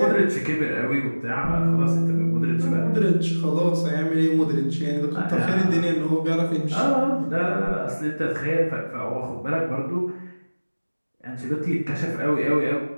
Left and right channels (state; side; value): inverted; both; correlation -1.00